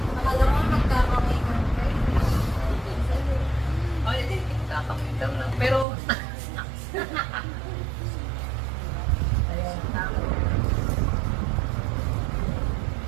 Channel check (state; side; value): drops out; left; at 5.9 s